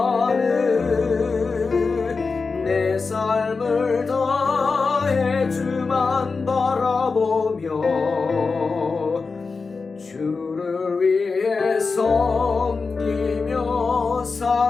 내 삶을 다해 주만 바라보며 주를 위해 섬기며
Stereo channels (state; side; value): quieter; right; 4.5 dB